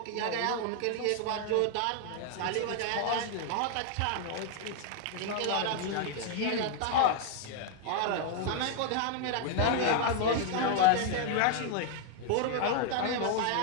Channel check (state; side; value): different; both; correlation 0.00